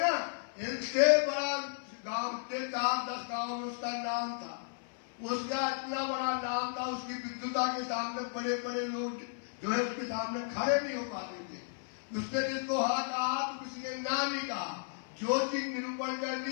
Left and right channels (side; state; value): right; silent; 55 dB below the other